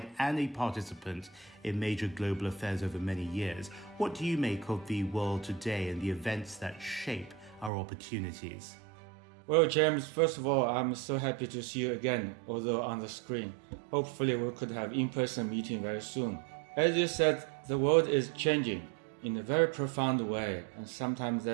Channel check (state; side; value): drops out; left; at 7.7 s